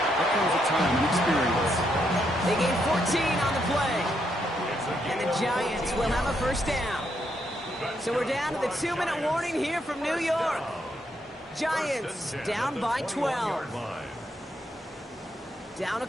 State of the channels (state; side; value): normal; both; correlation 0.77